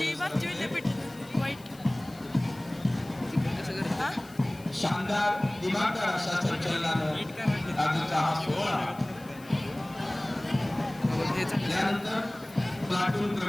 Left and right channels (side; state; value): left; noise; hiss, 23 dB below the sound